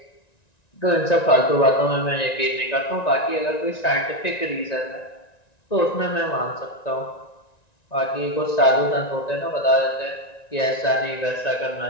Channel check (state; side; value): late; right; 1.9 ms